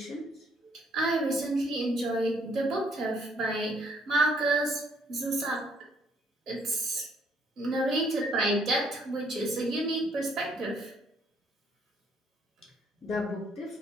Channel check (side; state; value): both; normal; correlation 0.67